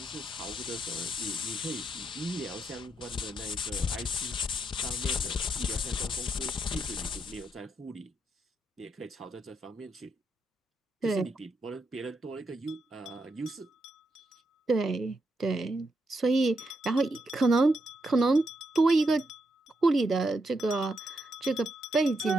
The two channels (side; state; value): both; normal; correlation 0.81